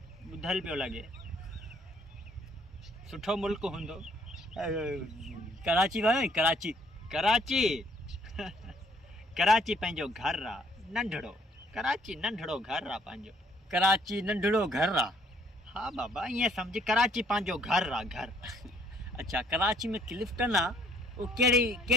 ॿुधल पियो लॻे, सुठो मुल्क हूंदो। कराची वियो आहीं? कराची? कराची कराची पंहिंजो घरु आहे, नंढड़ो। कराची नंढड़ो घरु आहे पंहिंजो। कराची नंढड़ो घरु आहे? हा बाबा, ईअं सम्झ कराची पंहिंजो घरु आहे, घरु। अच्छा, कराची में क्लिफ्टन आहे, उहो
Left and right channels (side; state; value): both; normal; correlation 0.64